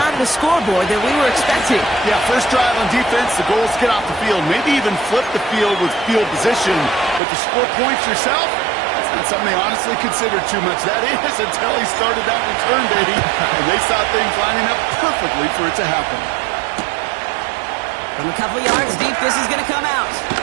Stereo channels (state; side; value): drops out; left; at 7.2 s